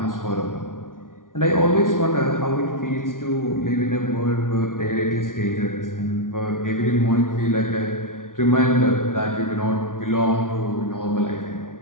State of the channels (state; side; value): late; right; 0.89 ms